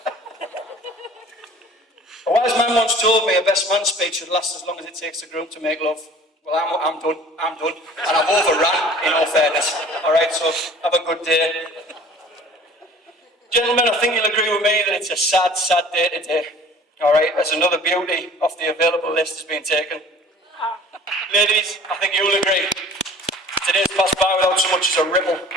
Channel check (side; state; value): both; normal; correlation 0.48